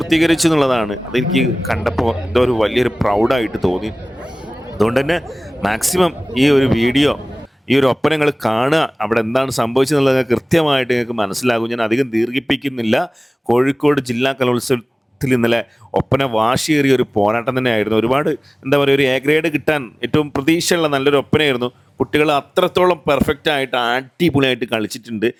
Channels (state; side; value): normal; both; correlation 0.98